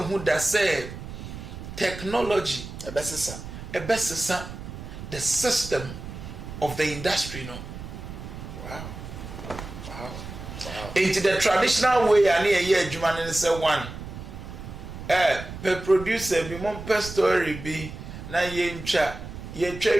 hu da say technology ebesesa the system of the industry no. Wow. Into the traditional way and here adwuma ne say one per producer bi mon per story bi na ye ntwa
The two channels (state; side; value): noise; right; rumble, 11 dB below the sound